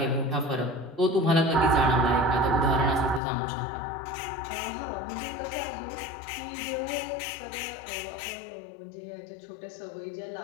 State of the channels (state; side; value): drops out; right; at 3.2 s